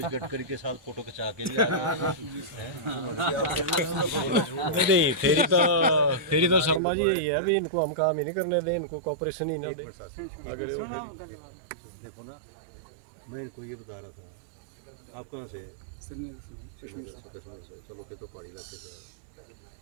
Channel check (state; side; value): drops out; left; at 6.8 s